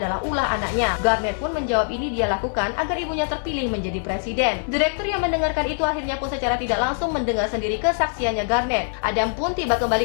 ulah anaknya. Garnett pun menjawab ini dia lakukan agar ibunya terpilih menjadi presiden. Direktur yang mendengarkan itu akhirnya pun secara tidak langsung mendengar sendiri kesaksiannya Garnett. Adam pun tiba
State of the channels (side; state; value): right; silent; 63 dB below the other